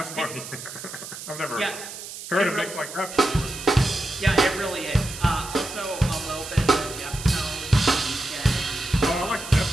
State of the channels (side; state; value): right; noise; hiss, 11 dB below the sound